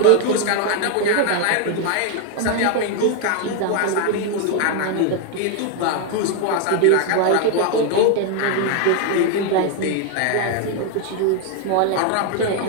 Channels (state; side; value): different; both; correlation 0.00